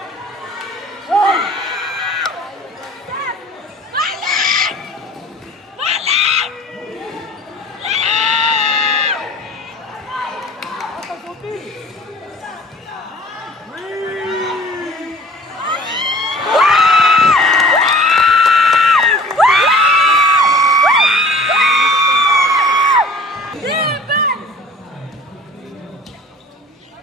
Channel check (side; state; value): both; normal; correlation 0.46